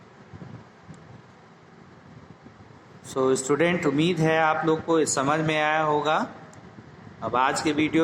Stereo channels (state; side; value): identical; both; correlation 1.00